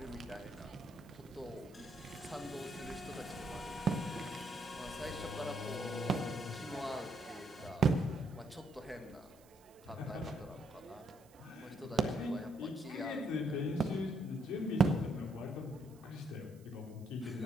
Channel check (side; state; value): right; noise; hiss, 27 dB below the sound